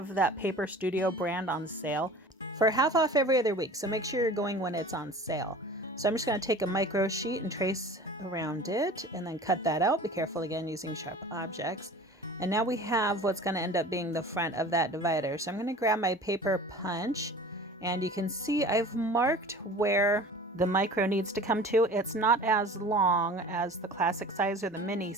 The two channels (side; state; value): both; normal; correlation 0.41